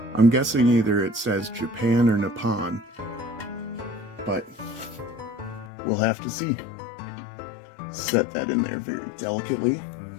I'm guessing either it says Japan or Nippon, but we'll have to see. Set that in there very delicately.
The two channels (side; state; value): right; drops out; at 5.7 s